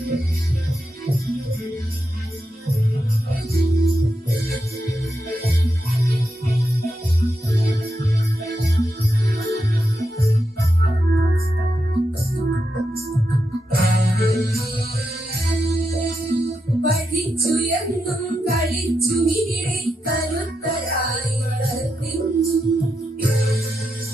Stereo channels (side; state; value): both; normal; correlation 0.86